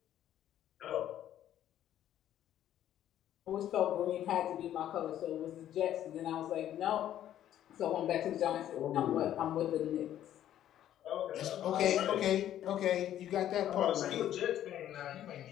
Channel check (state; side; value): quieter; right; 11.6 dB